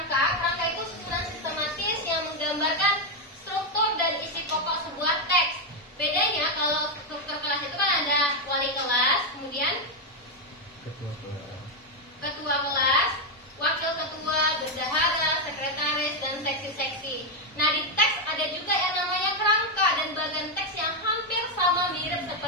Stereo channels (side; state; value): both; normal; correlation 0.03